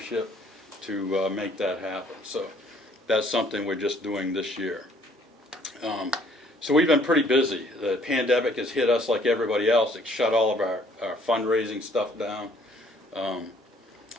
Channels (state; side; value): normal; both; correlation 0.61